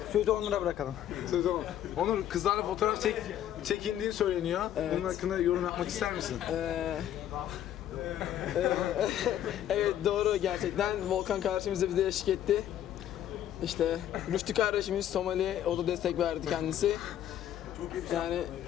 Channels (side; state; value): right; quieter; 11.2 dB